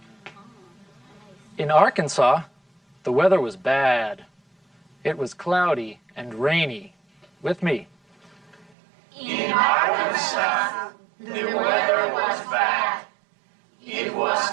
In Arkansas, the weather was bad. It was cloudy and rainy. With me. In Arkansas, the weather was bad. It was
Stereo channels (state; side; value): drops out; left; at 8.7 s